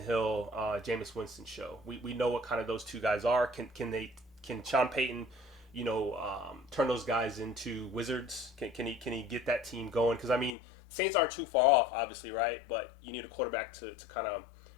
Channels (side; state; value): right; drops out; at 10.6 s